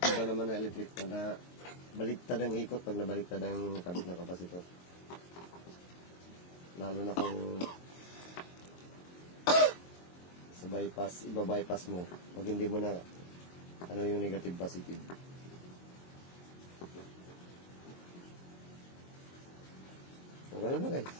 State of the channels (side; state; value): right; late; 22 ms